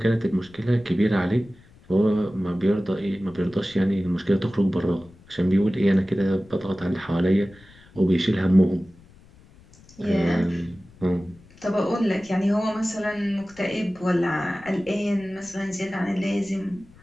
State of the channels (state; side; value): noise; left; rumble, 26 dB below the sound